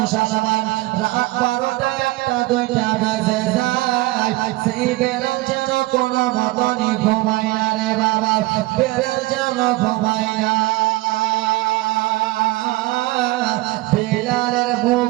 রাত 12টা 1টা 2টা বেজে যায় সেই বেলাল যেন কোনো মতনই ঘুমায় না রে বাবা বেলাল যেন ঘুমায় না বেলালের মুখ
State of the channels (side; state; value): left; quieter; 19.9 dB